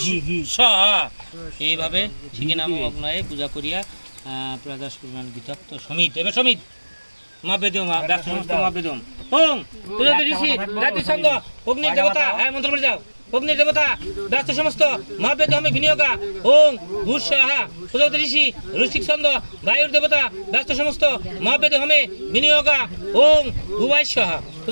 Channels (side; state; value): both; inverted; correlation -1.00